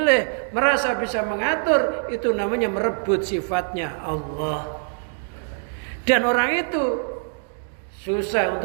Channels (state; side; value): silent; left; 63 dB below the other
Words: merasa bisa mengatur, itu namanya merebut sifatnya Allah. Dan orang itu susah